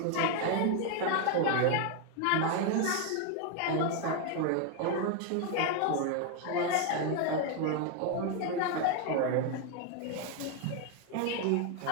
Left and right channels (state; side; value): different; both; correlation 0.01